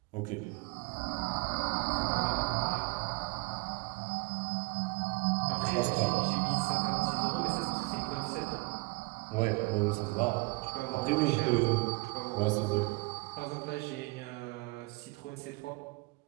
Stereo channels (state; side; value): quieter; left; 26.2 dB